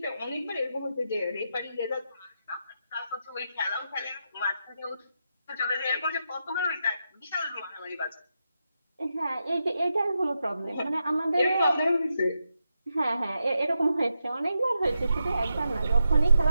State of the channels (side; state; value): both; inverted; correlation -0.85